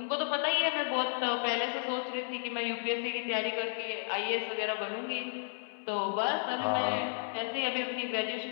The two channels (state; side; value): silent; right; 56 dB below the other